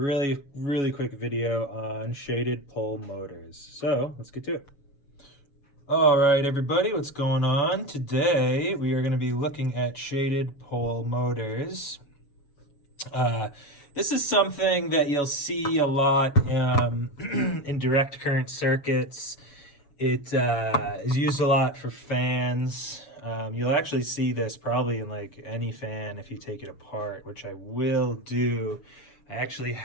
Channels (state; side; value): late; right; 7.1 ms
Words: quick video on shaded pole motors. So let's get to it. All right, everybody, what's going on? Today we are gonna be looking at shaded pole motors. This is something that you'll see a lot in direct current circuits. It is used a lot for fans. You'll actually see this probably in like any fan if you take it apart, which I will do. I actually